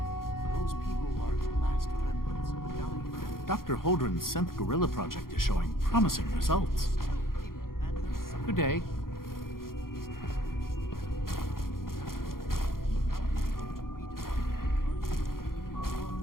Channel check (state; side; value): late; right; 0.92 ms